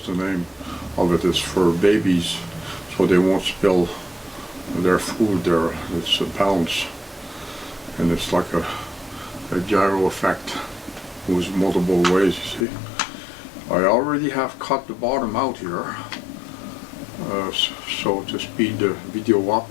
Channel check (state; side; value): drops out; right; at 12.7 s